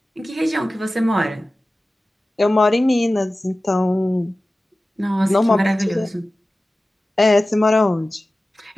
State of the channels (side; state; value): both; normal; correlation 0.96